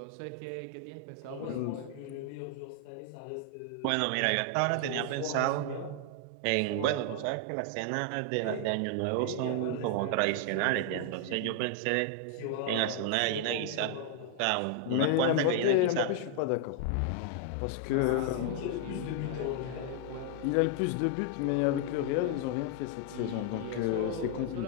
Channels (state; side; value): different; both; correlation 0.00